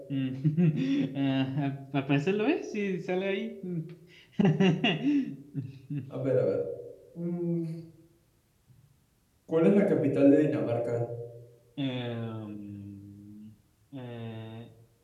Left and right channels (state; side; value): identical; both; correlation 1.00